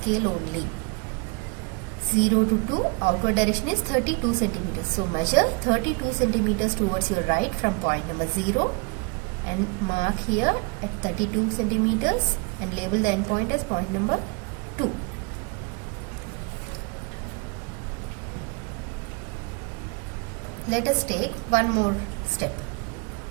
only. 0 to 2 outward direction is 32 centimeters. So measure 32 centimeters towards your right from point number 0 and mark here at 32 centimeters and label the end point as point number 2. Let us take one more step.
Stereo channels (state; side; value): quieter; left; 30.3 dB